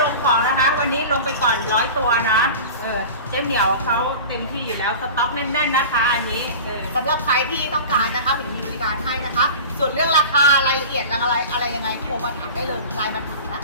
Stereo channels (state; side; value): inverted; both; correlation -0.34